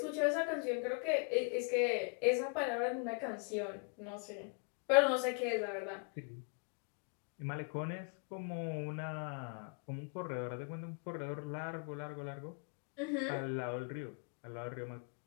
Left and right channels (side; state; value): right; quieter; 37.9 dB